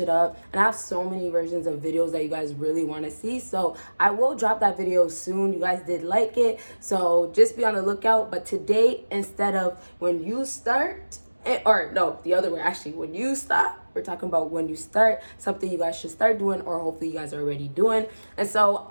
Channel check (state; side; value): inverted; both; correlation -1.00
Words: up. And I have so many versions of videos that you guys really want to see. So I will drop that video soon. You guys did like it. So just be on the lookout. But today, instead of when you start, or no, the other way, actually, when you stop, we're talking about when you start, something you guys should start doing, or hopefully you guys are already doing. And so